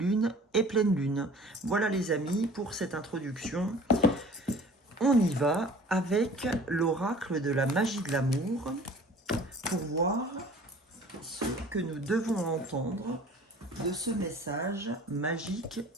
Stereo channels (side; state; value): both; normal; correlation 0.47